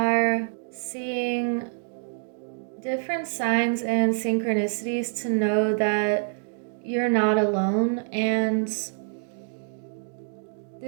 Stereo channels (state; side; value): silent; left; 61 dB below the other